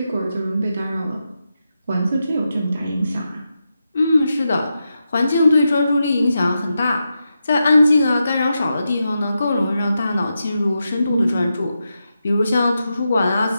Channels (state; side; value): inverted; both; correlation -0.88